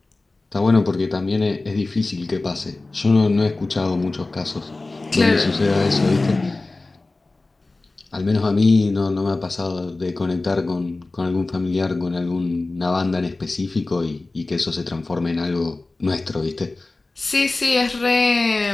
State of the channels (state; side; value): quieter; right; 3.2 dB